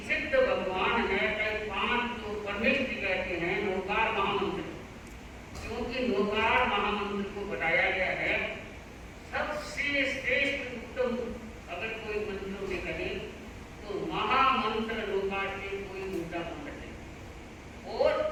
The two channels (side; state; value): both; identical; correlation 1.00